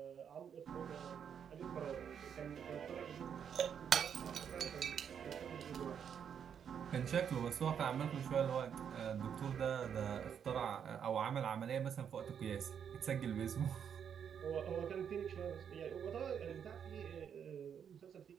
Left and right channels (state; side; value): quieter; left; 8.0 dB